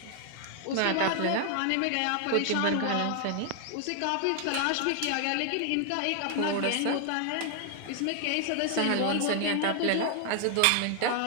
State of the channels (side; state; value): both; different; correlation 0.00